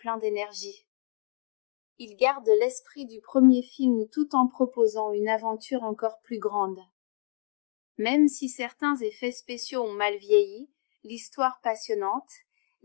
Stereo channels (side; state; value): right; silent; digital silence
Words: d'énergie. Il garde l'esprit du premier film tout en proposant une aventure encore plus grande. Même si certains effets spéciaux ont mal vieilli, l'histoire passionnante,